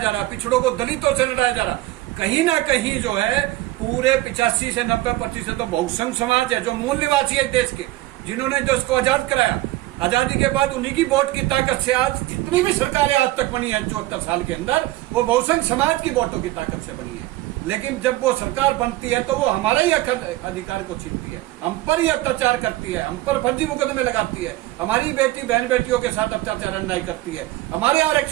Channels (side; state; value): left; quieter; 17.3 dB